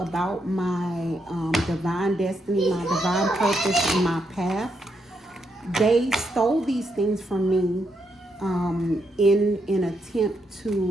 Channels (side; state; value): both; normal; correlation 0.79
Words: my divine destiny, my divine purpose, and my path, they stole these things from me in an attempt